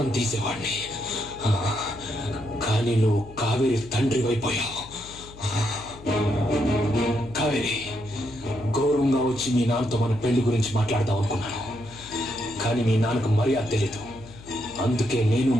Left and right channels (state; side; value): noise; left; hum, 18 dB below the sound